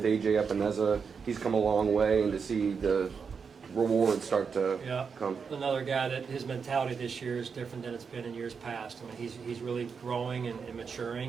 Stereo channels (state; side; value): quieter; left; 5.9 dB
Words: A.J. Epineza? He's come a long way, and to see the rewards start to come. Another guy that his mentality this year is different than it's been in years past. I mean, he's really growing and